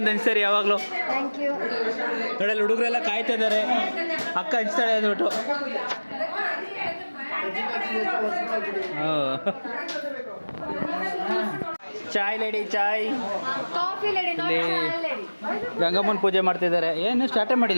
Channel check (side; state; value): both; inverted; correlation -1.00